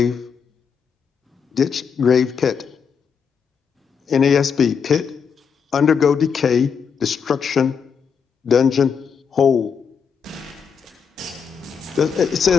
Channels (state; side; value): quieter; right; 6.6 dB